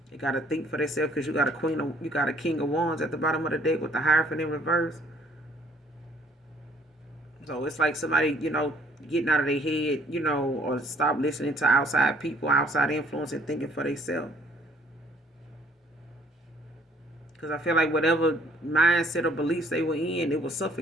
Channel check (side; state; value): both; normal; correlation 0.61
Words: They gotta think for themselves, because you got a king of wands at the bottom of the deck with the Hierophant in reverse. So it's like somebody, getting out of their head, or stop listening to outside people, outside influence, and thinking for themselves. Because I feel like whatever mindset or beliefs they were in, it was